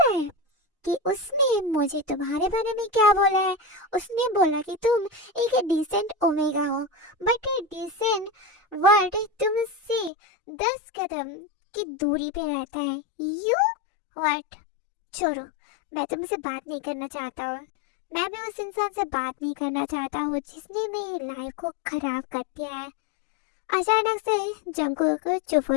है कि उसने मुझे तुम्हारे बारे में क्या बोला है? उसने बोला कि तुम एक डिसेंट ओमेगा हो, बट डिसेंट वर्ड तुमसे 10 कदम की दूरी पे रहता है। You what? छोड़ो, मैं तुमसे बात नहीं करना चाहता हूँ। मैं भी उस इंसान से बात नहीं करना चाहता हूँ जिसने मेरी लाइफ को खराब कर दिया है। अचानक से जंकुक चुप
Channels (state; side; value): drops out; right; at 10.1 s